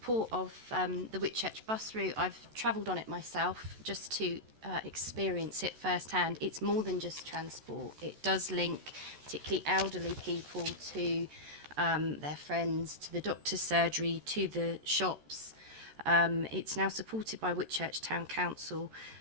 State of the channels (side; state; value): left; late; 14 ms